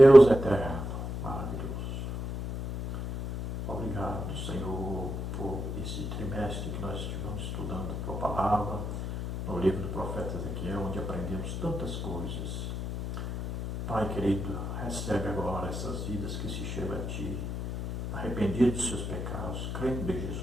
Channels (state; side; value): noise; left; hum, 5 dB below the sound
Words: eterno, maravilhoso. Obrigado, Senhor, por esse trimestre que nós estivemos estudando a Tua palavra, no livro do profeta Ezequiel, onde aprendemos tantas coisas. Pai querido, recebe agora essas vidas que se chegam a Ti, arrependidos dos seus pecados, crendo em